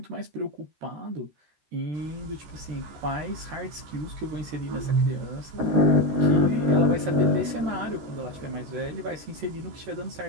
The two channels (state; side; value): late; left; 13 ms